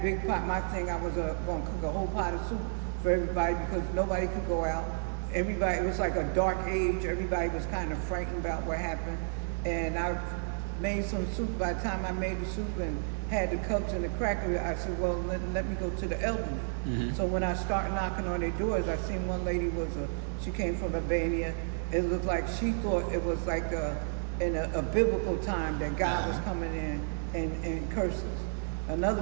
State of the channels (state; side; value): silent; left; digital silence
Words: pot. My thing, I was going to cook a whole pot of soup for everybody because nobody could go out. Everybody, it was like a dark age. Everybody was kind of frightened about what happened. And I made some soup. By the time I made the soup and had the cups and the cracker, I said, well, let me go to the elderly. So when I started knocking on their doors, I seen one lady she came from Albania. It looked like she thought it was like in a biblical time that God was coming in and curses.